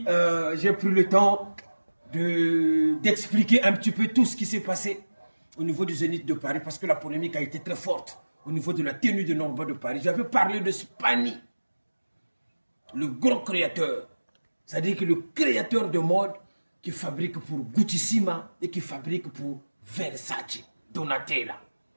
j'ai pris le temps d'expliquer un petit peu tout ce qui s'est passé au niveau du Zénith de Paris parce que la polémique a été très forte au niveau de la tenue de Norba de Paris. J'avais parlé de Spani, le grand créateur, c'est-à-dire que le créateur de mode qui fabrique pour Gucci-Sima et qui fabrique pour Versace, Donatella.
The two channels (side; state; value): both; inverted; correlation -1.00